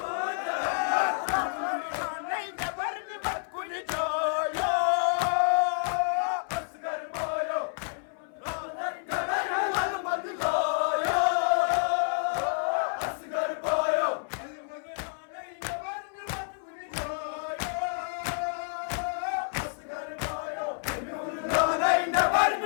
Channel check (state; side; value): silent; right; 58 dB below the other